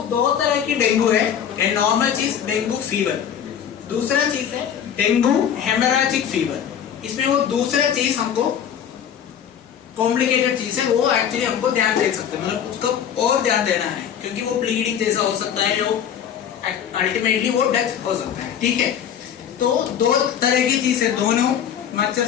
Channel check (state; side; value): quieter; right; 8.8 dB